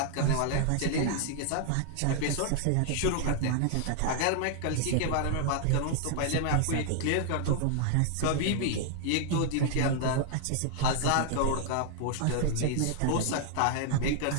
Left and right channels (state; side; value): different; both; correlation 0.00